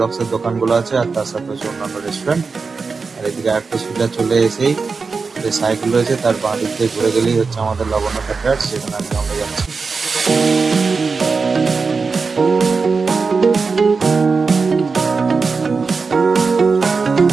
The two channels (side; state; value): left; quieter; 4.7 dB